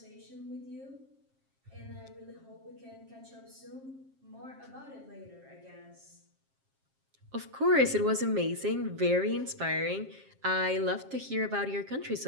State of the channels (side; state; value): left; late; 7.5 ms